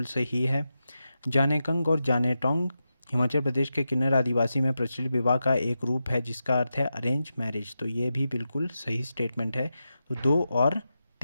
सही है। जानेकंग और जानेटोंग हिमाचल प्रदेश के किन्नर आदिवासी में प्रचलित विवाह का एक रूप है जिसका अर्थ है अरेंज मैरिज। तो ये भी बिल्कुल सही स्टेटमेंट है। तो 2 और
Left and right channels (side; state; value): both; inverted; correlation -0.89